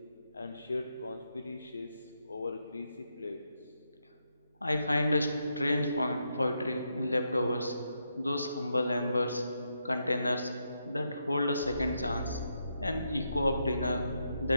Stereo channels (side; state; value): both; inverted; correlation -0.81